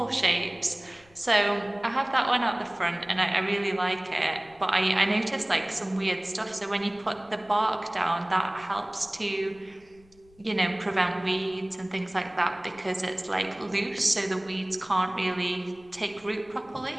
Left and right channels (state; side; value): noise; left; rumble, 29 dB below the sound